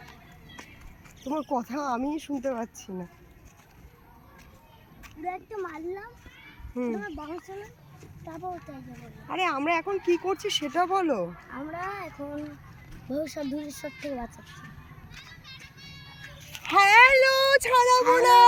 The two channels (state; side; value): identical; both; correlation 1.00